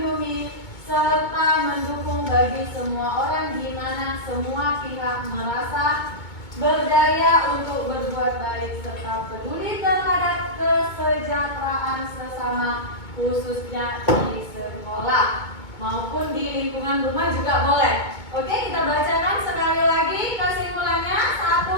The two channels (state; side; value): late; right; 2.2 ms